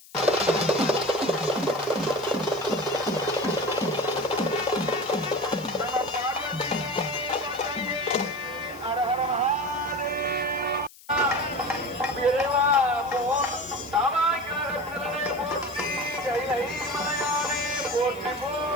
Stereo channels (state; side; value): noise; left; hiss, 22 dB below the sound